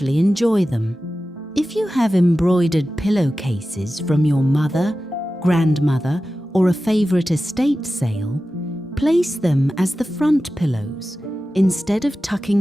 enjoy them. If you have embroidered pillowcases from your mother, grandmother, or a favorite estate sale, place them as the front pillows instead of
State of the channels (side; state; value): both; normal; correlation 0.94